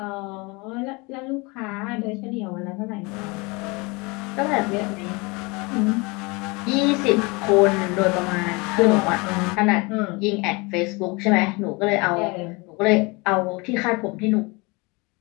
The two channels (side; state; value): right; quieter; 27.0 dB